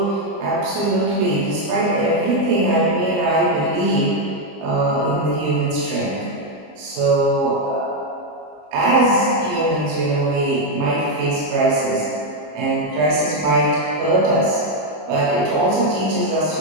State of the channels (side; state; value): left; late; 20 ms